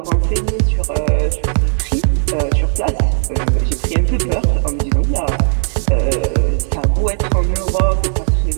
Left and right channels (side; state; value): left; silent; 65 dB below the other